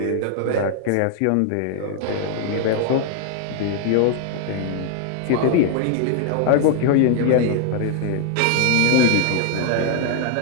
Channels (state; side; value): different; both; correlation 0.00